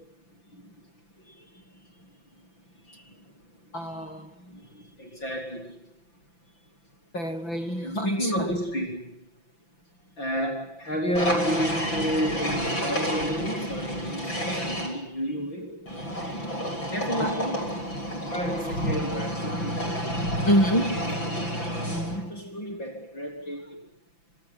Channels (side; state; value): right; late; 5.9 ms